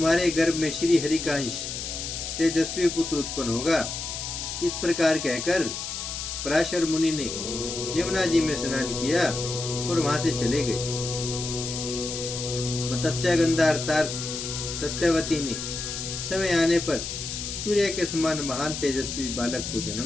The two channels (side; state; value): left; noise; hiss, 5 dB below the sound